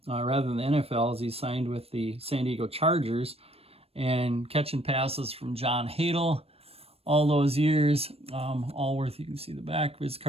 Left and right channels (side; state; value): left; late; 0.28 ms